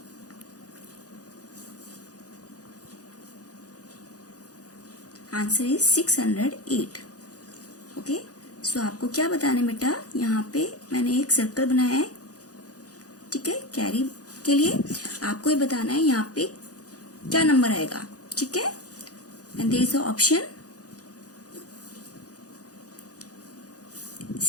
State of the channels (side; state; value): right; late; 0.67 ms